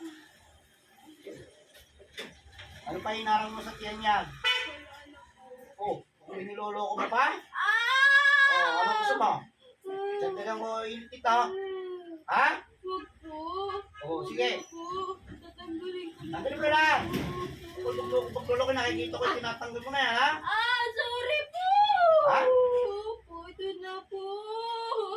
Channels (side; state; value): both; identical; correlation 1.00